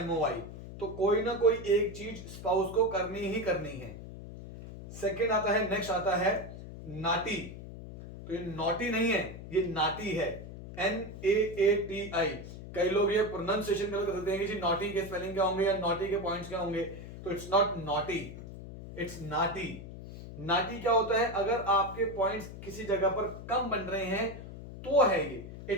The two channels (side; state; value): left; noise; hum, 12 dB below the sound